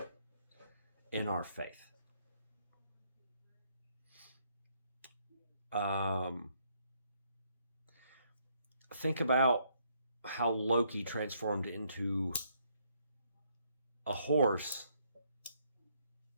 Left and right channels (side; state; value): both; inverted; correlation -0.71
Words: in our faith. Think about how Loki transformed into a horse